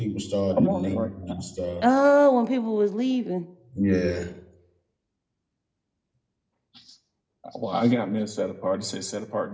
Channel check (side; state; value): both; identical; correlation 1.00